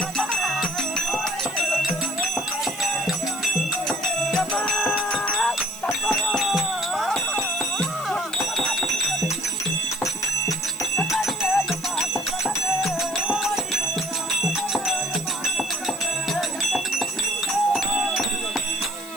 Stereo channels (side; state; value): left; noise; hiss, 17 dB below the sound